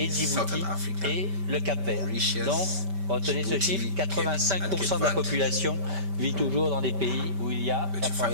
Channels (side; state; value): left; late; 5.1 ms